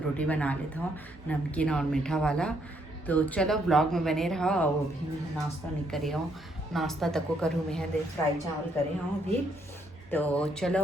बना लेता हूँ नमकीन और मीठा वाला। तो चलो ब्लॉग में बने रहो। और अभी मैं नाश्ता नहीं करी हूँ, नाश्ता तक को करूँ मैं दे फ्राई चावल करे हूँ अभी। तो चलो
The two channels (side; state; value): both; normal; correlation 0.72